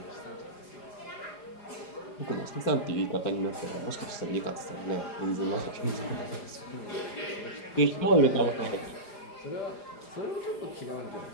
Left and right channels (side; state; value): right; late; 4.9 ms